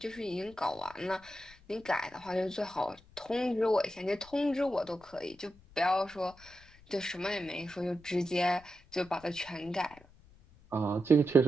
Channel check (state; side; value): noise; left; rumble, 25 dB below the sound